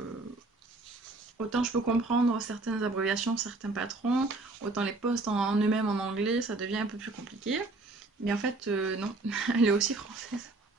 autant je peux comprendre certaines abréviations, certains patrons, autant les posts en eux-mêmes en anglais ça devient un peu plus compliqué. Mais en fait non, elle est aussi française.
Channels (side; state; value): left; quieter; 3.2 dB